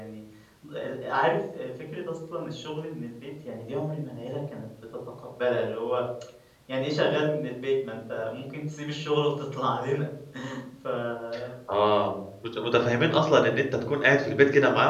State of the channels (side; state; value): both; identical; correlation 1.00